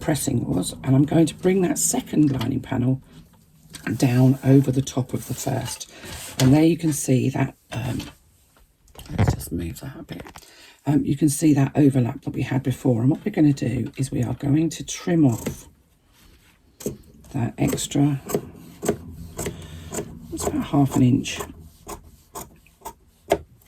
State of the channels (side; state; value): both; identical; correlation 1.00